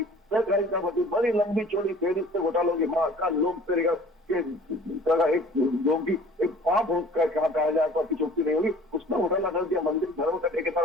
सहकारिता भर्ती, बड़ी लंबी चौड़ी फेरिस्त से घोटालों की महाकाल लोग एक योगी एक पाप कहा जाए तो आपकी चुप्ती नहीं होगी। उसमें घोटाला कर दिया। मंदिर धर्म का ठेकेदार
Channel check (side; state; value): both; normal; correlation 0.49